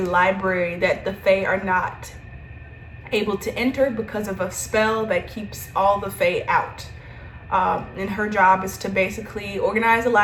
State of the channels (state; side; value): identical; both; correlation 1.00